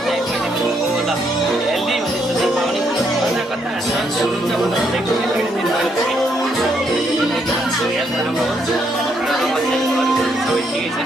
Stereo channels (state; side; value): normal; both; correlation 0.74